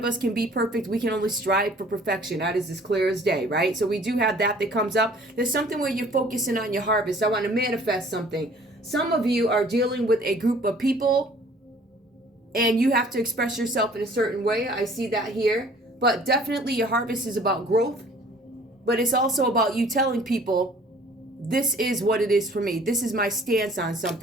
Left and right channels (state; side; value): normal; both; correlation 0.53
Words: us can be perfect. We can only strive for perfection. That is as clear as day, right? So we do have that comes up. There's something where you're focusing on your harvest. I want to manifest something. Some of you are dealing with a group of people and you have to express yourself in a certain way. I see that here. But definitely your harvest is about growth. But it's also about you telling people, this is what it is for me. This is my stance on